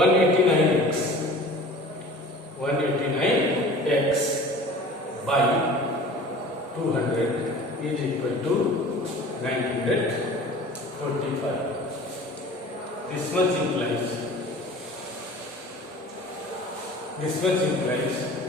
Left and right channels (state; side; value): normal; both; correlation 0.42